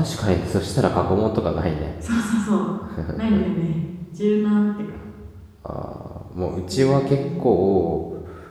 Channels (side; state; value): both; identical; correlation 1.00